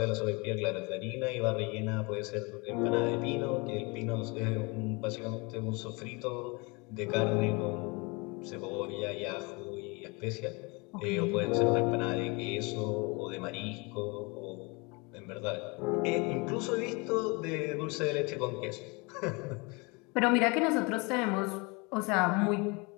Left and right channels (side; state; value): right; quieter; 28.5 dB